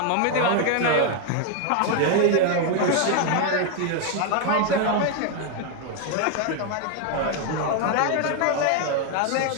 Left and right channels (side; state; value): both; different; correlation 0.01